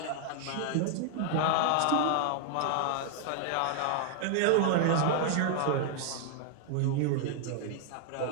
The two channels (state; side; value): different; both; correlation -0.01